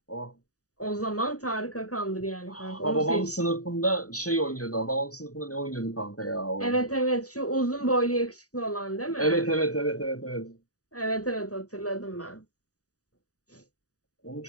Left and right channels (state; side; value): late; right; 0.66 ms